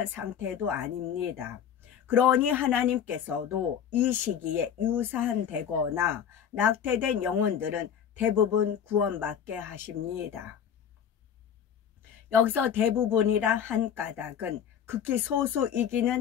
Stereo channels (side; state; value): right; quieter; 8.5 dB